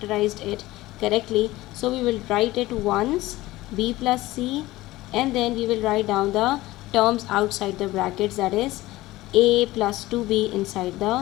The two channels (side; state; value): right; quieter; 18.0 dB